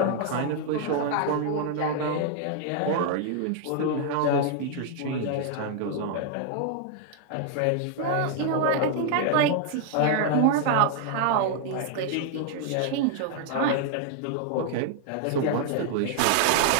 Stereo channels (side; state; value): both; different; correlation 0.00